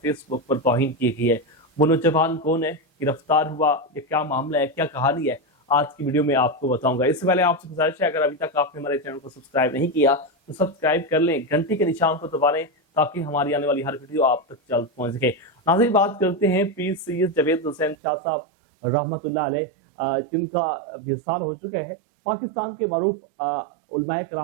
فیس بک پر توہین کی گئی ہے. وہ نوجوان کون ہے، گرفتار ہوا، یہ کیا معاملہ ہے، کیا کہانی ہے، آج کی ویڈیو میں آپ کو بتاؤں گا. اس سے پہلے آپ سے گزارش ہے اگر ابھی تک آپ نے ہمارے چینل کو سبسکرائب نہیں کیا تو سبسکرائب کر لیں، گھنٹی کے نشان کو دبا لیں تاکہ ہماری آنے والی ہر ویڈیو آپ تک جلد پہنچ سکے. ناظرین بات کرتے ہیں پیر سید جاوید حسین شاہ صاحب رحمۃ اللہ علیہ جن کا وصال ہو چکا ہے. پاکستان کے معروف علماء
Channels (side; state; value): left; drops out; at 17.9 s